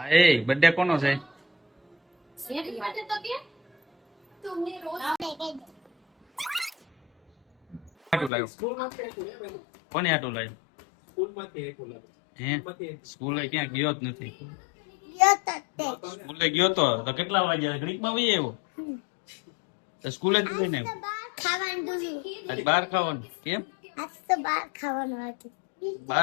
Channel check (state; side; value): drops out; right; at 8.3 s